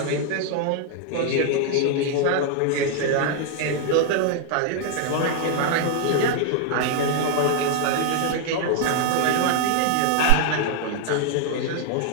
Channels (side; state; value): both; different; correlation 0.00